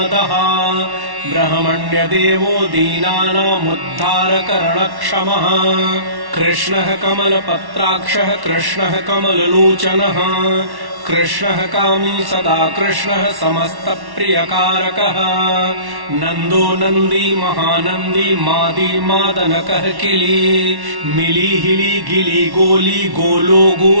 ब्रह्मण्यदेवो दीनानामुद्धारकरणक्षमः कृष्णः कमलपत्राक्षः कृष्णः कमललोचनः कृष्णः कामी सदा कृष्णः समस्तप्रियकारकः नन्दो नन्दी महानन्दी मादी मादनकः किली मिली हिली गिली गोली गोलो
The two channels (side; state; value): left; late; 1.1 ms